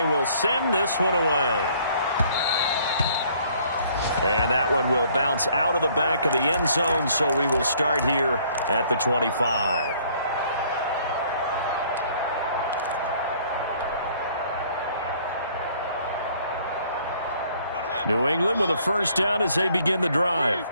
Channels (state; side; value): inverted; both; correlation -0.60